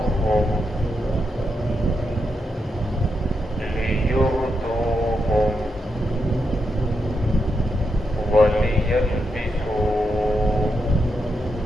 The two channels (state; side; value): normal; both; correlation 0.84